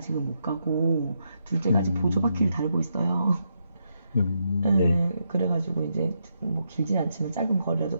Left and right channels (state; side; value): inverted; both; correlation -0.81